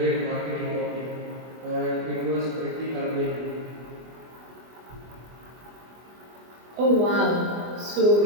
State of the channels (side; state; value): left; late; 24 ms